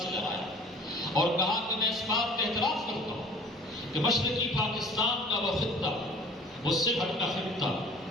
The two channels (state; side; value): normal; both; correlation 0.48